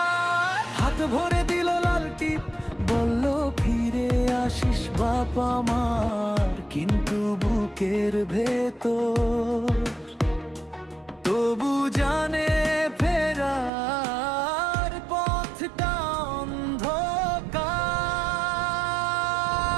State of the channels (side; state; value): left; drops out; at 13.7 s